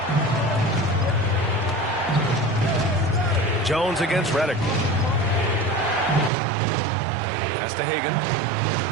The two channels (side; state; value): left; drops out; at 6.3 s